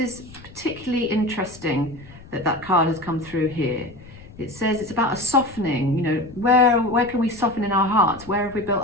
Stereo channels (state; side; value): noise; left; rumble, 20 dB below the sound